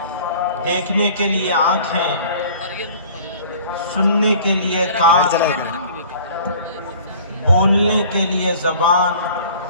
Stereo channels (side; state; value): both; inverted; correlation -0.48